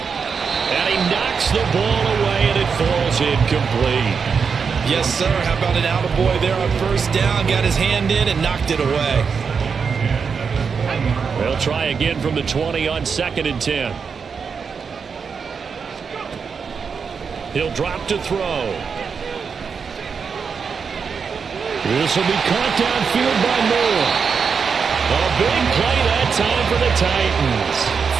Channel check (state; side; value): quieter; left; 5.9 dB